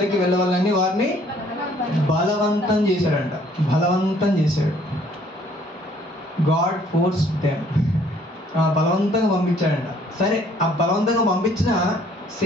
వెళ్ళవాలని వారిని బలవంతం చేశాడంట. బలవంతం చేశాడు. God force them. బలవంతంగా పంపించాడంట. సరే, ఆ బలవంతంగా పంపించిన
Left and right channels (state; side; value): normal; both; correlation 0.60